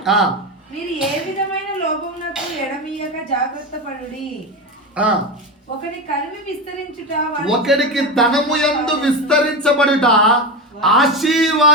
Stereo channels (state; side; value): normal; both; correlation 0.19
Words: మీరు ఏ విధమైన లోపమునకు ఎడమీయక జాగ్రత్త పడుడి. ఒకడికి ధనము యందు విస్తరించబడుట